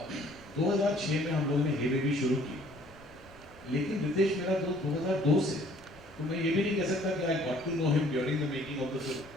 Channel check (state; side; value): noise; right; rumble, 23 dB below the sound